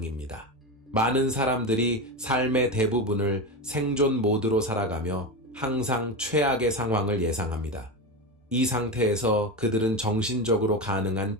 많은 사람들이 삶의 대부분을 생존 모드로 살아가며 항상 최악의 상황을 예상합니다. 이 상태에서 그들은 정신적으로 가능한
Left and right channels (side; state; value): both; normal; correlation 0.19